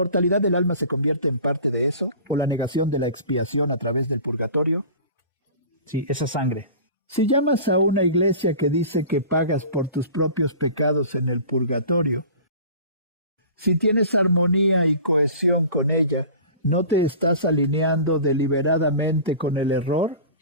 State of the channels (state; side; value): inverted; both; correlation -0.40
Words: del alma se convierte en parte de eso? ¿O la negación de la expiación a través del purgatorio? Sí, esa sangre. Si llamas a una iglesia que dice que pagas por tus propios pecados en el purgatorio, si tienes armonía y cohesión con ella, ¿no te estás alineando deliberadamente con el error?